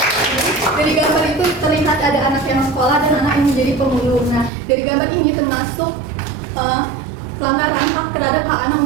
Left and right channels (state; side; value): drops out; left; at 4.5 s